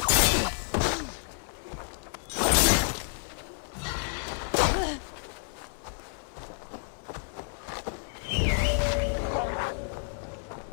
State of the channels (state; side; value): silent; right; 58 dB below the other